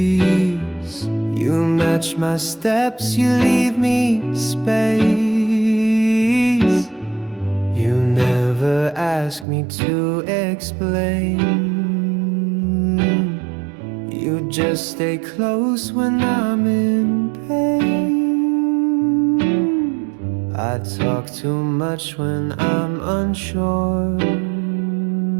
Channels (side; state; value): left; drops out; at 9.5 s